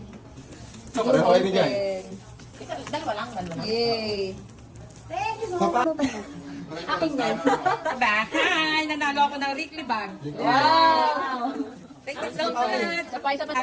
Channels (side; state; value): both; identical; correlation 1.00